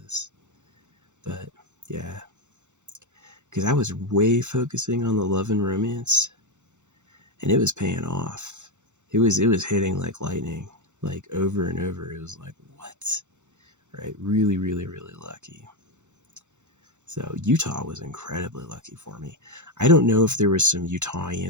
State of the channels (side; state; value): left; late; 0.84 ms